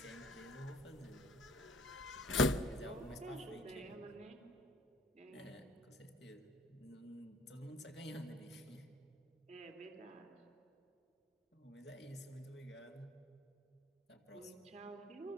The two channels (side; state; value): both; normal; correlation 0.55